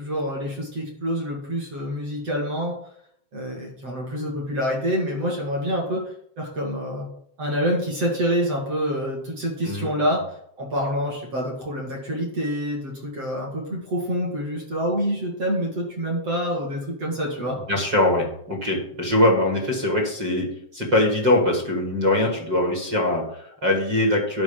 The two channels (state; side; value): late; left; 7.5 ms